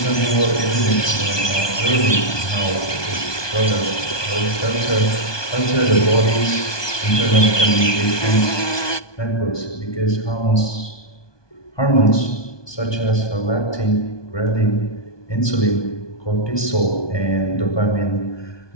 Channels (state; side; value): late; right; 1.2 ms